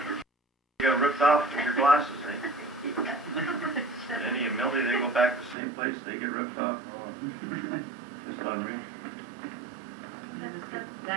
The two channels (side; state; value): left; drops out; at 5.6 s